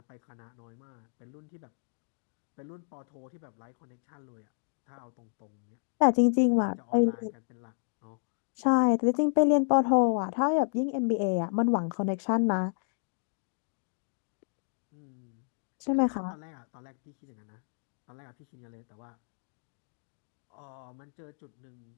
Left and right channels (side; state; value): right; silent; digital silence